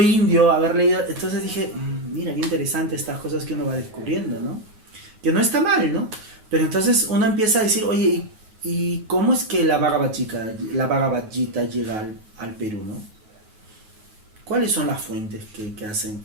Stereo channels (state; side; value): late; left; 9.4 ms